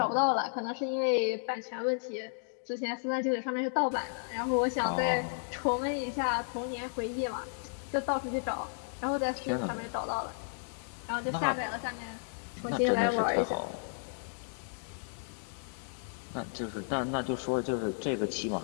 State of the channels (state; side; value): silent; right; digital silence